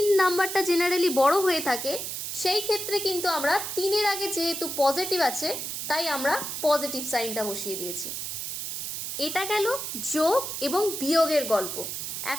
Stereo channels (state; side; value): noise; right; hiss, 5 dB below the sound